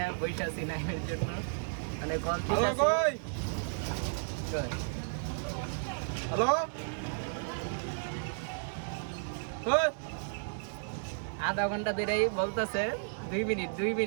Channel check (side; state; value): left; silent; digital silence